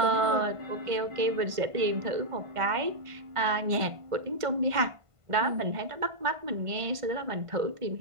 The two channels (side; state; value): left; late; 1.5 ms